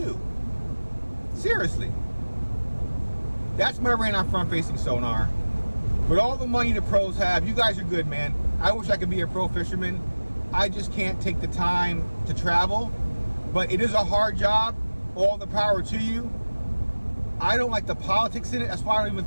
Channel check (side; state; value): both; inverted; correlation -1.00